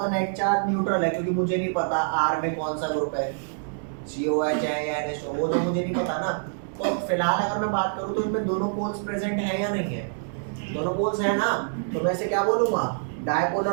नेट चार्ज न्यूट्रल है क्योंकि मुझे नहीं पता R में कौन सा ग्रुप है, COH है या NH2, वो तो मुझे नहीं पता ना। तो फिलहाल अगर मैं बात करूँ तो इनमें दोनों पोल्स प्रेजेंट है या नहीं है, दोनों पोल्स है ना, तो मैं इसे क्या बोलूँगा,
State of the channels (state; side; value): silent; left; digital silence